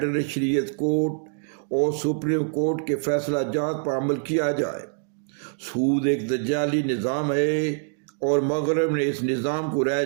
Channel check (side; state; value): left; silent; 59 dB below the other